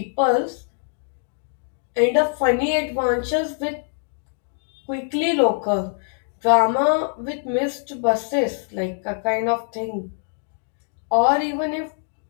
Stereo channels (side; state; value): right; silent; 61 dB below the other